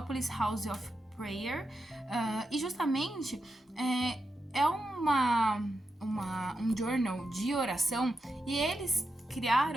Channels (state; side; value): normal; both; correlation 0.86